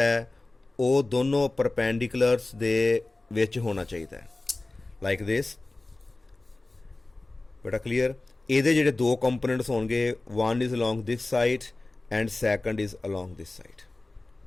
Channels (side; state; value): right; quieter; 3.0 dB